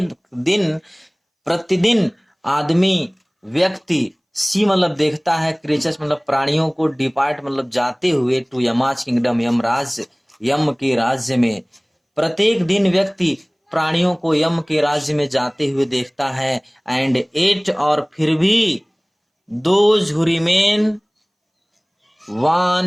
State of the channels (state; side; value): identical; both; correlation 1.00